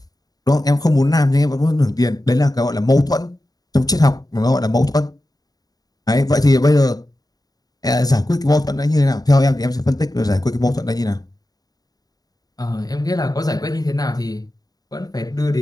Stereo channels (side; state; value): right; late; 0.18 ms